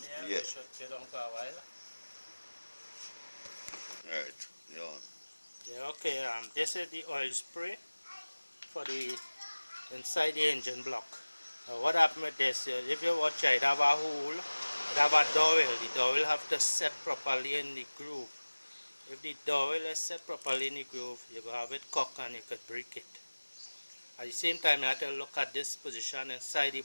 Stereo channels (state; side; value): inverted; both; correlation -1.00